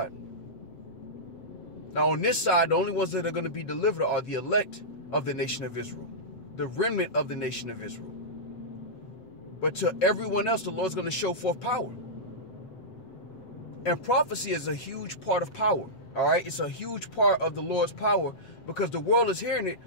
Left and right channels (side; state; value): right; late; 7.8 ms